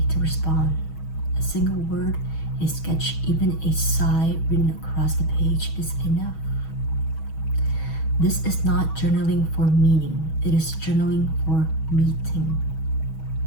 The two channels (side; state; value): right; late; 6.3 ms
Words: to respond. A single word, a sketch, even a sigh written across the page is enough. This is not journaling for meaning, it is journaling for meeting.